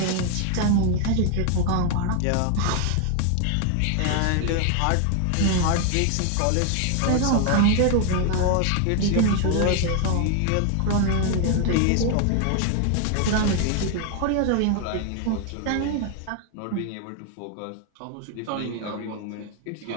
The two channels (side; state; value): both; different; correlation 0.01